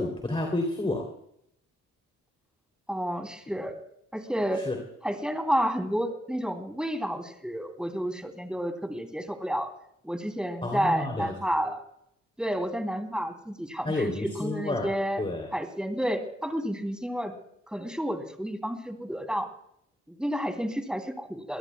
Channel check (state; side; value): normal; both; correlation 0.86